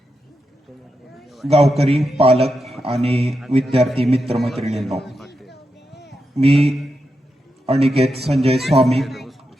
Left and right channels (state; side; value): normal; both; correlation 0.87